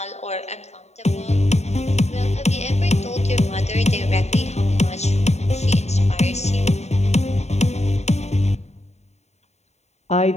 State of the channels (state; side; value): late; right; 0.32 ms